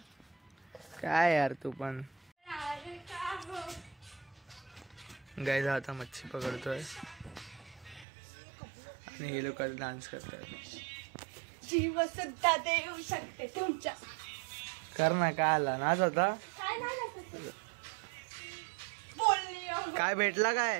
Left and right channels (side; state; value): left; drops out; at 8.1 s